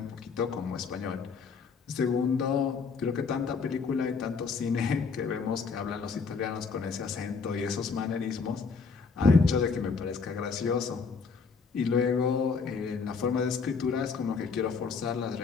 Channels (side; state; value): right; quieter; 5.1 dB